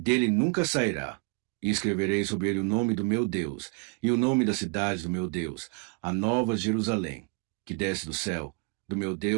nunca sairá. E escreverei sobre ele o nome do meu Deus, e o nome da cidade do meu Deus, a nova Jerusalém, que desce do céu, do meu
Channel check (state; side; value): quieter; left; 31.6 dB